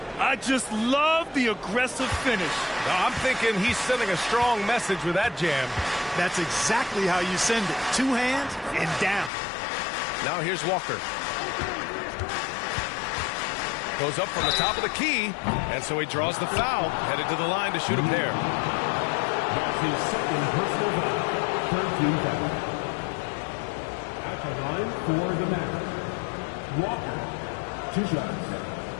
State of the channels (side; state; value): right; drops out; at 9.3 s